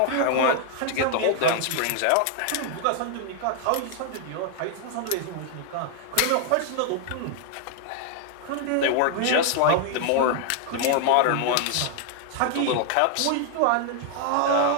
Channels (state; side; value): different; both; correlation 0.00